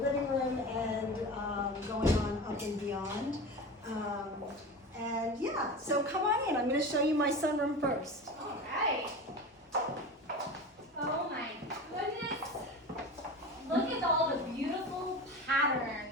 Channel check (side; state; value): both; normal; correlation 0.30